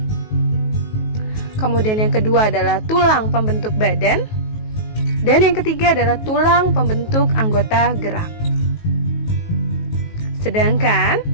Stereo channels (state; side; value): late; right; 19 ms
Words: Kemudian yang kedua adalah tulang pembentuk badan, dan yang ketiga adalah tulang pembentuk anggota gerak. Sedangkan